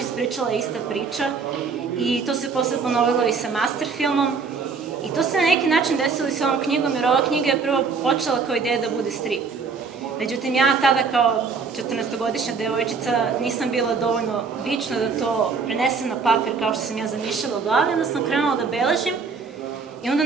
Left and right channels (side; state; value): left; quieter; 5.1 dB